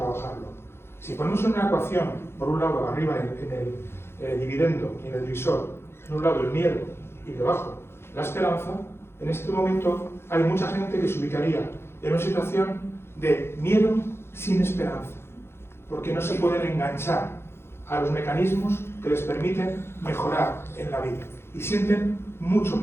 Si ponemos en una ecuación, por un lado arriba en el dividendo y en el divisor, en un lado el miedo y debajo la esperanza, en este momento hay mucha gente que se ubicaría en una situación de miedo sin esperanza, porque no se pueden enganchar a los mecanismos que les permiten mejorar en la vida y sienten mucho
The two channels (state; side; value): late; right; 0.12 ms